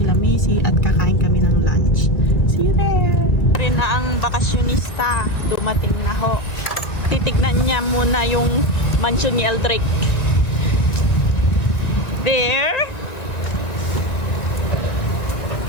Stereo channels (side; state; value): right; late; 1.9 ms